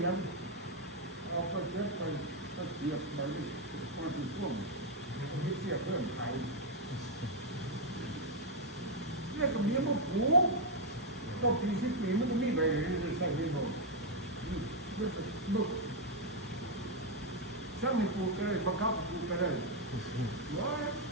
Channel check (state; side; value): normal; both; correlation 0.01